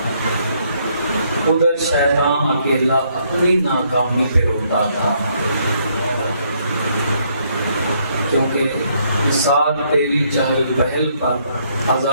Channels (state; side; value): inverted; both; correlation -0.71